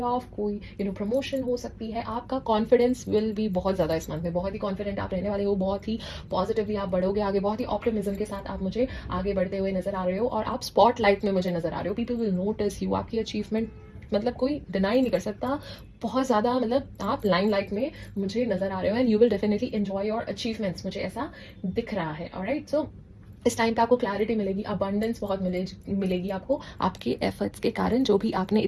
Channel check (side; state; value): both; identical; correlation 1.00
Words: ऑफ, कोई प्रमोशन हो सकती है, आपका कॉन्फिडेंस विल भी बहुत ज़्यादा इस मंथ में, बहुत ही कॉन्फिडेंट आप रहने वाले हो, बहुत ही पॉजिटिवली आप बढ़ोगे आगे, बहुत ही ऑप्टिमिज्म के साथ आप मुझे आगे बढ़ते हुए नजर आ रहे हो, और आप स्पॉटलाइट में मुझे नजर आ रहे हो, पीपल विल नोटिस यू, आपकी अचीवमेंट मतलब कोई डिनाई नहीं कर सकता, बहुत ज़्यादा, मतलब आप लाइमलाइट में मुझे नजर आ रहे हो, and you will definitely enjoy your achievements, मुझे ऐसा दिख रहा है। ऑलराइट, सो इस टाइम पे आपको क्लैरिटी मिलेगी, अबंडेंस बहुत मिलेगी आपको, आपके एफर्ट्स के कारण, जो भी आपने